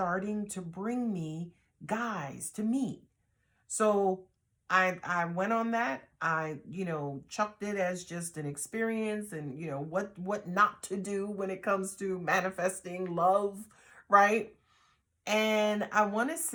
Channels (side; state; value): both; identical; correlation 1.00